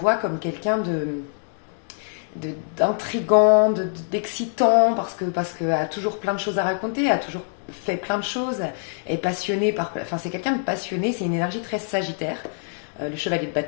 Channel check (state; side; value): silent; right; digital silence